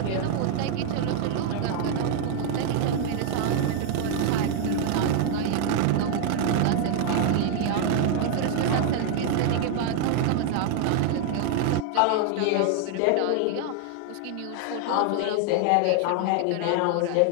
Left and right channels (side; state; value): both; different; correlation 0.00